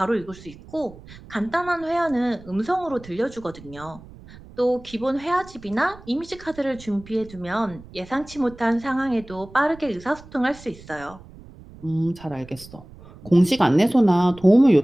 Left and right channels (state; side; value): noise; right; rumble, 20 dB below the sound